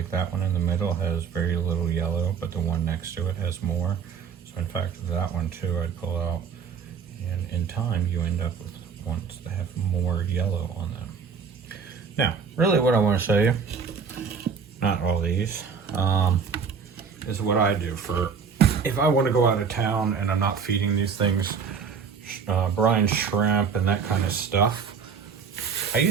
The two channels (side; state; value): left; quieter; 6.3 dB